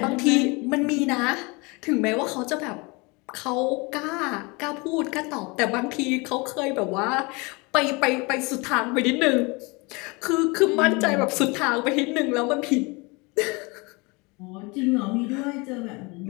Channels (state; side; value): quieter; right; 27.3 dB